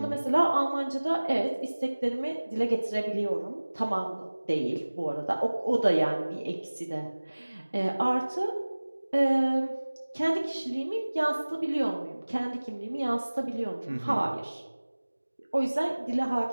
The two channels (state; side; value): inverted; both; correlation -1.00